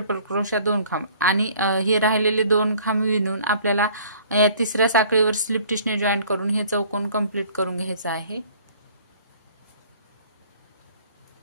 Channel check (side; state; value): both; inverted; correlation -0.54